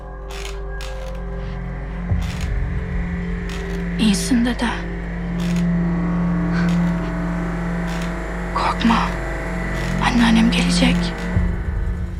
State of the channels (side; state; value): both; identical; correlation 1.00